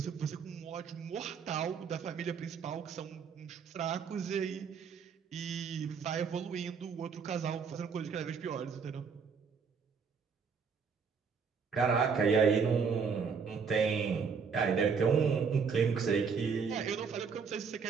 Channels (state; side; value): quieter; left; 5.9 dB